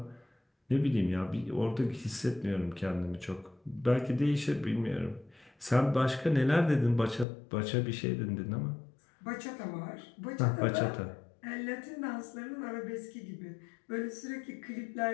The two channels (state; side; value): drops out; right; at 7.2 s